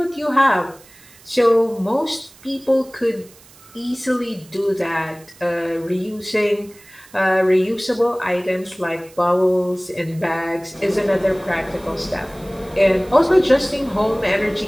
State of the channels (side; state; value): right; noise; hiss, 24 dB below the sound